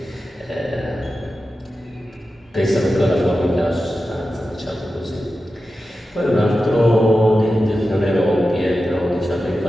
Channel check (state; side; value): normal; both; correlation 0.92